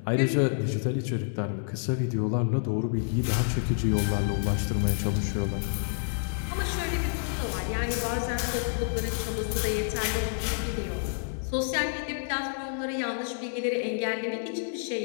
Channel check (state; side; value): silent; right; digital silence